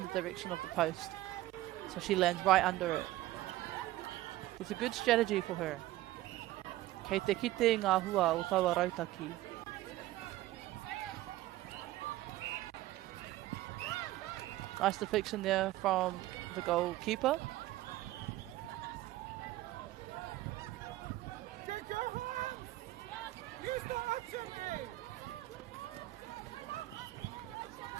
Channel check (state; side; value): quieter; left; 16.3 dB